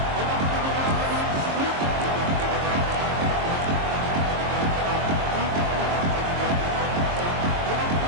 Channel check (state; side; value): late; left; 22 ms